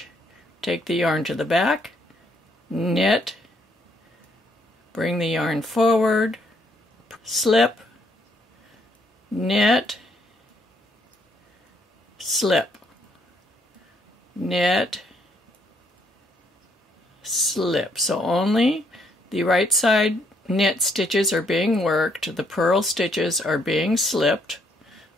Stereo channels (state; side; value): normal; both; correlation 0.70